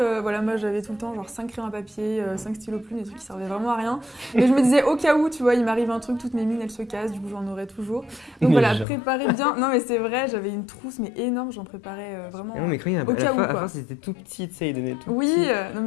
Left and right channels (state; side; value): drops out; right; at 8.8 s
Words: voilà moi j'avais tout le temps genre 5 crayons à papier, 5 stylos plumes, des trucs qui servaient vraiment à rien. Mais je me disais au cas où, tu vois, il m'arrive un truc, toutes mes mines elles se cassent, du coup j'en aurai toujours. Donc voilà, préparez bien. Non mais c'est vrai, j'avais une trousse mais énorme, j'en préparais vraiment non, mais crayons, au cas où. À fois c'était tout petit, tu sais, il donnait tout oui, petit. non